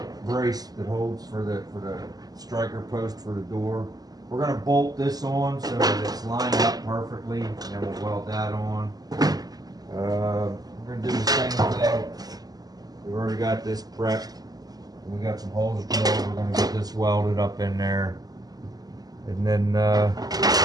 brace that holds for the striker post for the door. We're going to bolt this on so that it's lined up perfectly, and then we'll weld that on. We're going to do the same thing. We've already got this prepped. We got some holes drilled. We're going to get this welded up in there. And then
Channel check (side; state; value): left; late; 0.18 ms